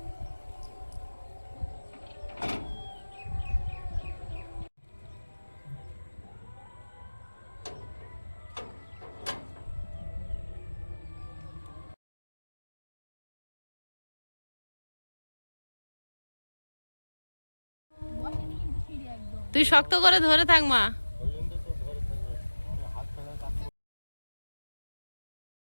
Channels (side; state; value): both; inverted; correlation -1.00